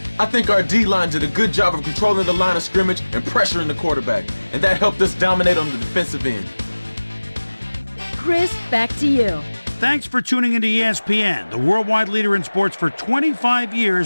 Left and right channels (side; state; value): both; inverted; correlation -1.00